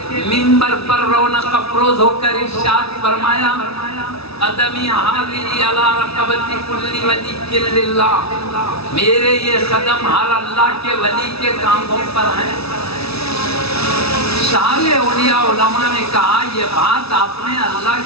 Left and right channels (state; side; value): late; right; 0.78 ms